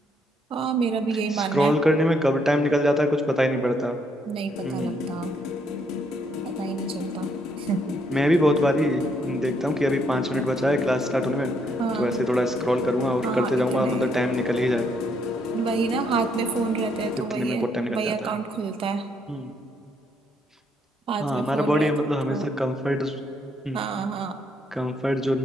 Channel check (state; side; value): normal; both; correlation 0.72